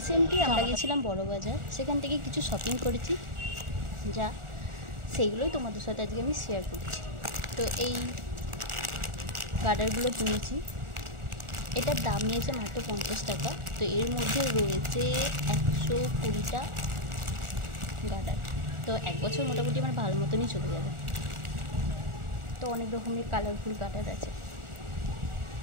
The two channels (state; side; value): late; left; 1.4 ms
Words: আমরা গেছিলাম বড়বাজার, সেখান থেকে কিছু শপিং করেছি, যা সেইগুলোই তোমাদের সাথে আজকে আমি শেয়ার করছি। তো এই গার্ডারগুলো কিনেছি, এটার দাম নিয়েছে মাত্র 50 টাকা। তো এর মধ্যে রয়েছে 120টা গার্ডার। তো এক বছর মোটামুটি আমার ভালো মতনই চলে যাবে। তো অনেক রকমের কালারফুল গার্ডার আছে।